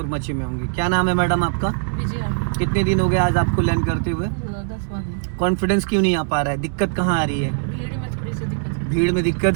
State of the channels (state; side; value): silent; left; digital silence